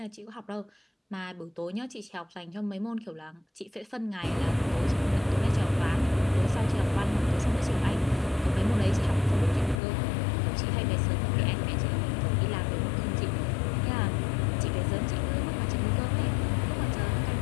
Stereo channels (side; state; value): right; drops out; at 9.8 s